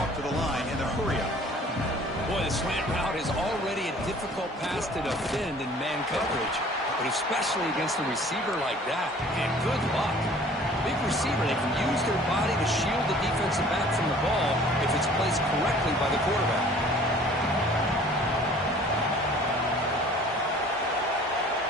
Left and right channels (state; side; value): normal; both; correlation 0.51